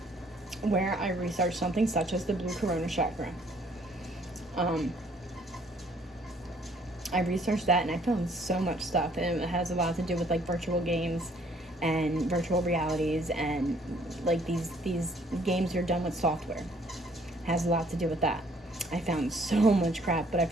where I researched something such as the blue corona chakra. I researched that and I found so much stuff, and it has a lot to do with, like, virtual games and virtual realities, and, like, these games are done with software. It has a lot to do with that. I found so much crap, but I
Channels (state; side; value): normal; both; correlation 0.62